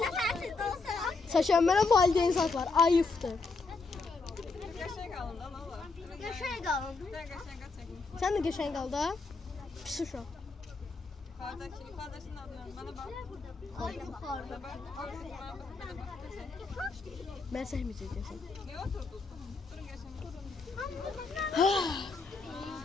Saçan mənə valideyn saklar. Ayıptır. Yaşaya kalın. Sen de geçen kaldı ha? Pis uşaq. Kardeşinin adını bana bak. Mən səhməyəcəksən. Ne oturdun? Durun geçen.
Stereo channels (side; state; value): right; quieter; 4.0 dB